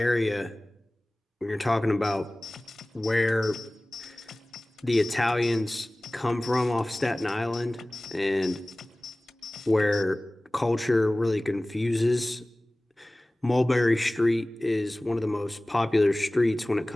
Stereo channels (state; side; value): normal; both; correlation 0.98